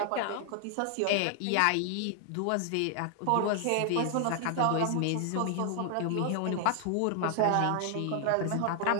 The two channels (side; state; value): both; different; correlation 0.00